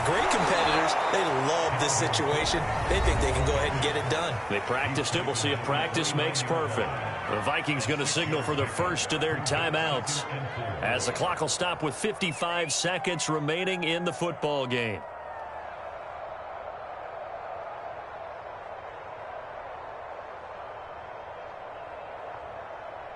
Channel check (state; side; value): identical; both; correlation 1.00